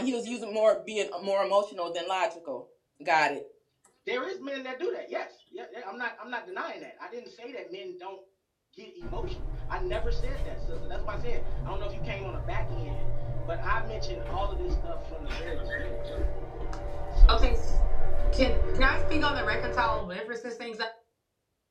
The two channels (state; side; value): identical; both; correlation 1.00